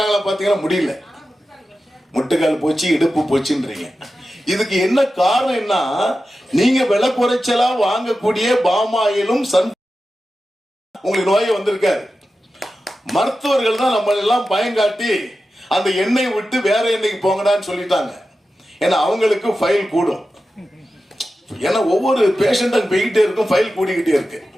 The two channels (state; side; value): normal; both; correlation 0.93